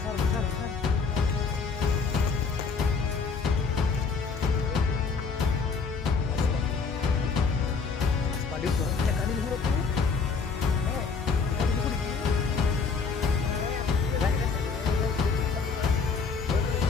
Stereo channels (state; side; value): quieter; right; 5.0 dB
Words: Besar. Padahal tuh, ya kan ini huruf tuh.